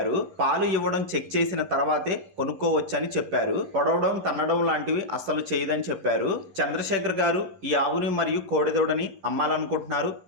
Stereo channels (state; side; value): late; left; 11 ms